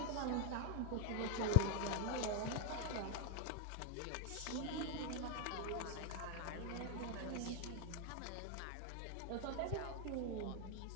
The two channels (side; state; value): both; different; correlation 0.01